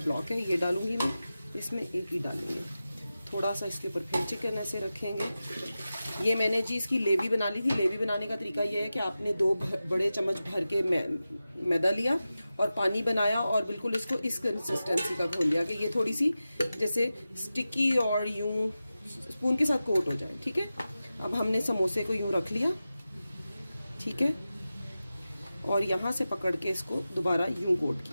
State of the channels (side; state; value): both; inverted; correlation -0.94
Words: है, ये डालूंगी मैं इसमें, एक ही डालेंगे। थोड़ा सा इसके ऊपर फिर चिकन ऐसे रखेंगे। ये मैंने जी इसकी लेवी बना ली थी। लेवी बनाने का तरीका ये है कि आपने 2 बड़े चम्मच भर के मैदा लिया और पानी बनाया और बिल्कुल इसको इस कंसिस्टेंसी का घोल लिया कि ये थोड़ी सी जैसे स्टिकी और यूं स्पून के साथ कोट हो जाए, ठीक है। अब हमने समोसे को यूं रख लिया, ठीक है, और यहाँ से पकड़ के इसको दोबारा यूं कोट